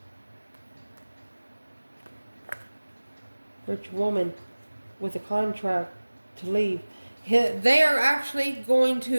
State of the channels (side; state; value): both; inverted; correlation -1.00